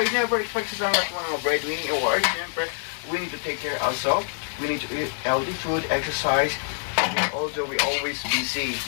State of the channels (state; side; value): silent; right; digital silence